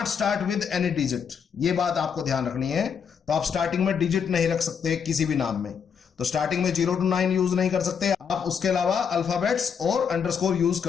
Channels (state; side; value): quieter; right; 6.9 dB